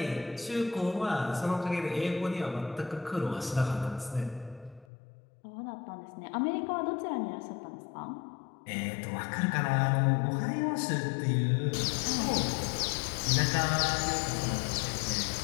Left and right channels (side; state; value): right; drops out; at 4.9 s